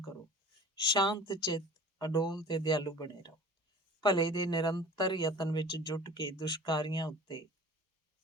ਕਰੋ। ਸ਼ਾਂਤ ਚਿੱਤ, ਅਡੋਲ ਤੇ ਦਿਆਲੂ ਬਣੇ ਰਹੋ। ਭਲੇ ਦੇ ਨਿਰੰਤਰ ਯਤਨ ਵਿੱਚ ਜੁਟ ਕੇ ਦੁਸ਼ਕਾਰੀਆਂ ਉੱਤੇ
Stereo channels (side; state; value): both; normal; correlation 0.43